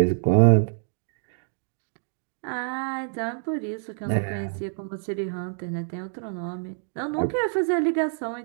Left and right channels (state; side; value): silent; left; digital silence